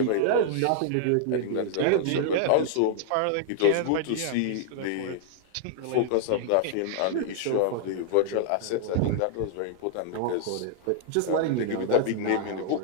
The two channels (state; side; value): different; both; correlation -0.01